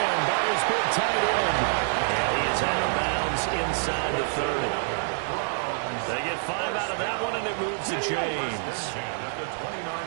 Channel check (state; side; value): silent; left; digital silence